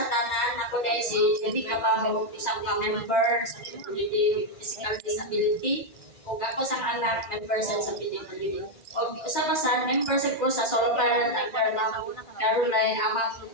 tanan. Ako dahil si Judy Cabaho, isang ka-member sa PWD Physical Disability. O ako sa anak, member sa PWD. O isa pa sa member sa ko sa solo parent under Ma'am Caroline Amang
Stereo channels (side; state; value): right; late; 2.1 ms